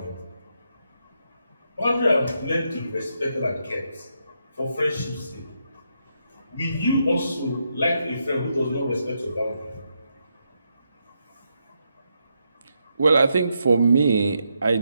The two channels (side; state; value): both; inverted; correlation -0.81